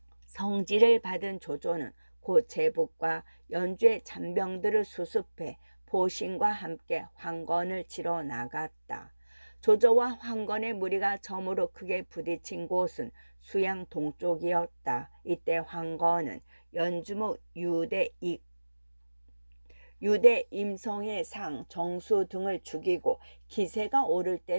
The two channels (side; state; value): both; inverted; correlation -1.00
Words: 성지를 받은 조조는 곧 제북과 연주의 잔병들을 수습해 포신과 함께 황건을 치러 나갔다. 조조와 황건의 무리가 처음으로 크게 부딪힌 곳은 수양 동쪽이었다. 이때 황건은 연주목 유대 임성의 상, 정수 등을 죽이고 기세가 오를